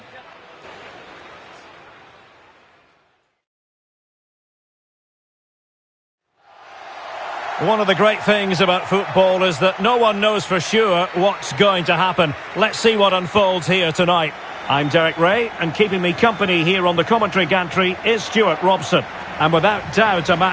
One of the great things about football is that no one knows for sure what's going to happen. Let's see what unfolds here tonight. I'm Derek Ray, and keeping me company here on the commentary gantry is Stuart Robson. And without doubt, a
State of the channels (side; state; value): both; identical; correlation 1.00